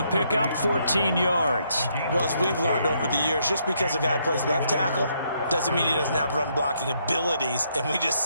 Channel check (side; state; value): both; inverted; correlation -0.74